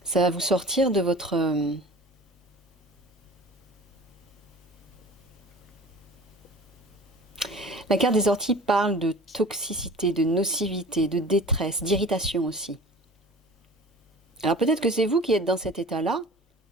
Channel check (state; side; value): normal; both; correlation 0.41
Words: Ça va vous sortir de votre... La carte des orties parle de toxicité, de nocivité, de détresse, d'irritation aussi. Alors peut-être que c'est vous qui êtes dans cet état-là,